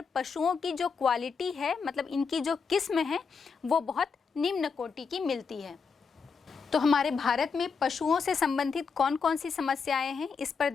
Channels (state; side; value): quieter; right; 5.4 dB